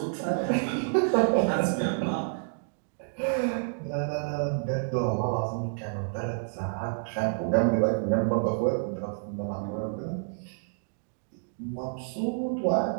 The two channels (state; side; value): silent; left; digital silence